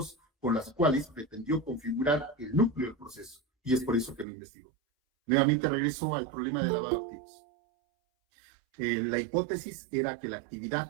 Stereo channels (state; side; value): drops out; left; at 4.2 s